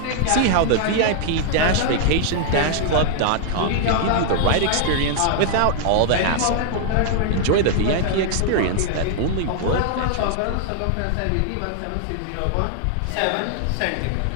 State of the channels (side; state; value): both; different; correlation 0.00